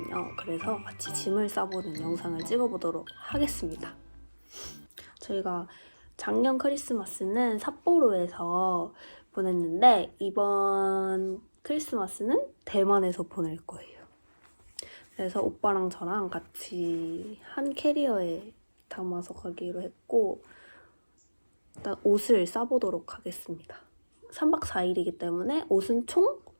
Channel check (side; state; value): both; inverted; correlation -1.00